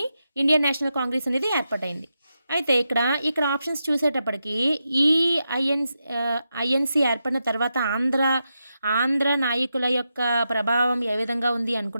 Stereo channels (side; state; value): both; inverted; correlation -0.87